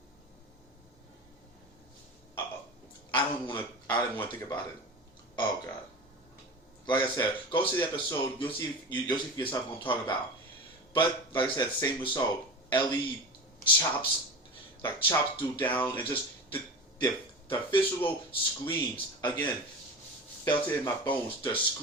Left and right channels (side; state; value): both; normal; correlation 0.30